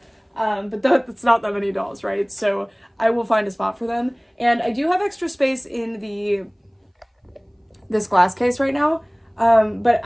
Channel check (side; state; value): both; identical; correlation 1.00